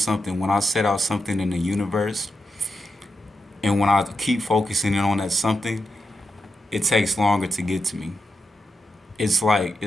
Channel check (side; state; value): both; normal; correlation 0.87